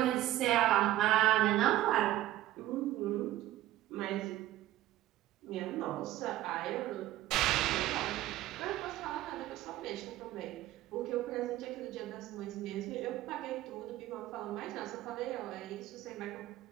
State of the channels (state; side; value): quieter; left; 14.8 dB